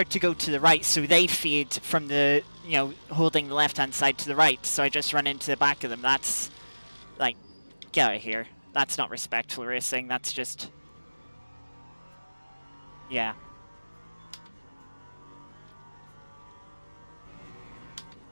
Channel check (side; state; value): both; inverted; correlation -1.00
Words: to go to the right, so they feed from the, you know, holding the left-hand side to the right, so I just run into the back of them. That's, like, get out of here. That's not respectful racing, that's just... Yeah.